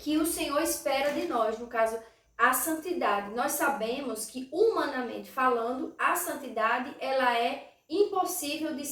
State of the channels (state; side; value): identical; both; correlation 1.00